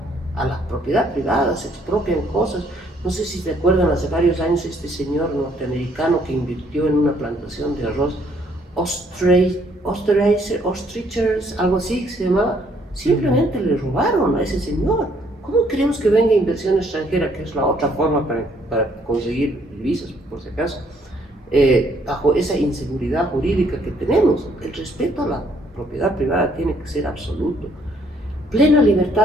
A la propiedad privada se expropian cosas. No sé si te acuerdan, hace varios años este señor norteamericano que invirtió en una plantación de arroz, Ostrichers, algo así se llamaba, simplemente le robaron a ese señor. ¿Cómo queremos que venga inversión extranjera, que es la otra forma para conseguir divisas, por si acaso, bajo esa inseguridad jurídica que tenemos? El respeto a la propiedad privada tiene que ser absoluto. Plena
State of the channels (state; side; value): normal; both; correlation 0.66